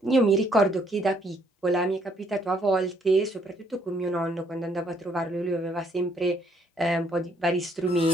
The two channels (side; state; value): both; normal; correlation 0.68